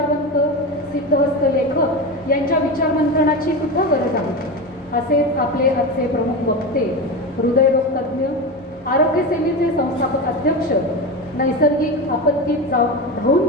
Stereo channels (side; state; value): both; normal; correlation 0.21